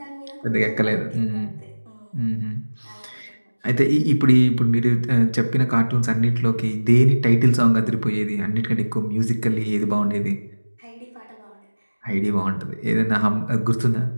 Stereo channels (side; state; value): both; inverted; correlation -1.00